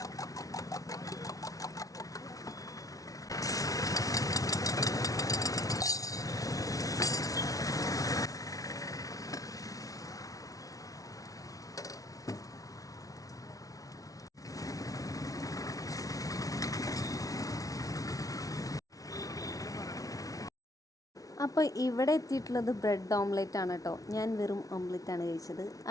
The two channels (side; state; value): right; late; 0.18 ms